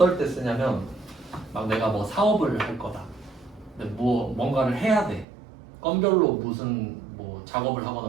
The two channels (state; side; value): drops out; left; at 5.2 s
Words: 때 쓰냐면, 막 내가 뭐 사업을 할 거다. 근데 뭐 뭔가를 해야 돼. 건별로 무슨 뭐 작업을 하거나